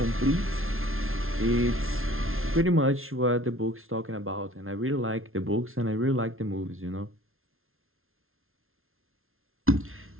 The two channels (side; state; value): left; late; 0.61 ms